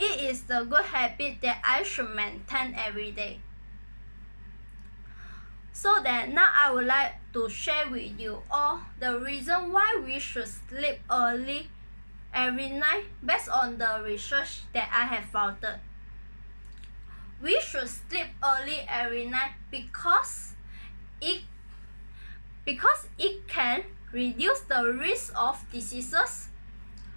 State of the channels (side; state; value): both; inverted; correlation -1.00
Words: is the good habit that I should maintain every day. So that now I would like to share with you all the reason why we should sleep early every night based on the research that I have found. We should sleep early every night because it can reduce the risk of diseases.